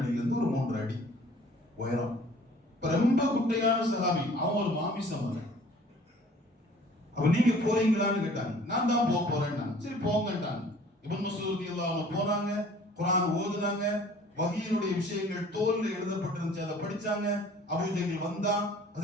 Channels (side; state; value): both; normal; correlation 0.52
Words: ஒரு 3 அடி உயரம். ரொம்ப குட்டையான சஹாபி. அவன் ஒரு மாமிசம். அப்ப நீங்க போறீங்களான்னு கேட்டாங்க. நான் தான் போறேன். சரி போங்கட்டாங்க. இப்னு மஸ்ஊத் ரலியல்லாஹு அன்ஹு போனாங்க. குர்ஆன் ஓதுனாங்க. வஹீனுடைய விஷயங்கள் தோல்ல எழுதப்பட்டிருந்துச்சு, அதை படிச்சாங்க. அபூஜஹல் வந்தான்.